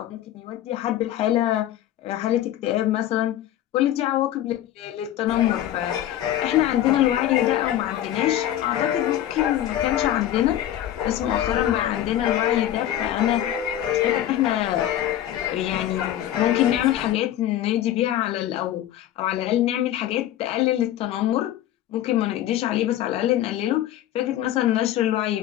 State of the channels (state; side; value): quieter; right; 12.4 dB